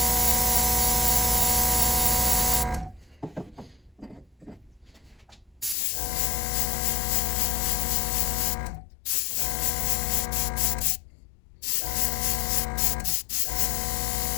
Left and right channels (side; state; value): right; drops out; at 5.8 s